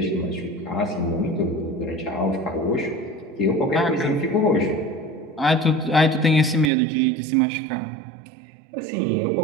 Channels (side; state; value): left; drops out; at 6.7 s